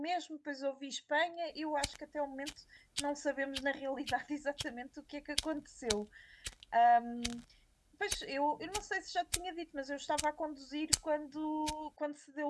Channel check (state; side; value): identical; both; correlation 1.00